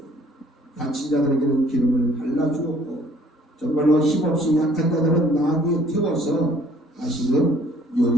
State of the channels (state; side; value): normal; both; correlation 0.58